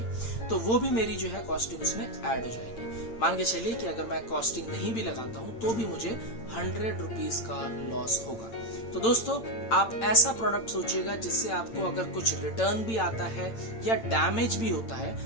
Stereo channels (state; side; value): late; right; 8.8 ms